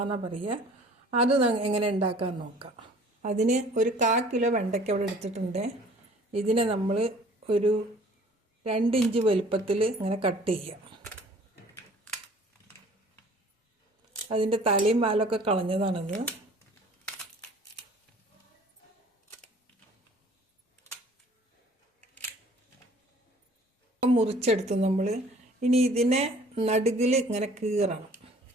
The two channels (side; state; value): both; normal; correlation 0.52